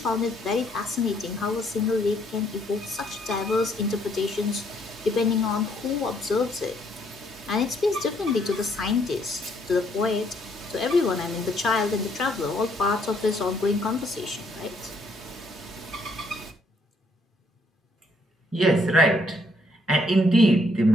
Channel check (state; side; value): normal; both; correlation 0.69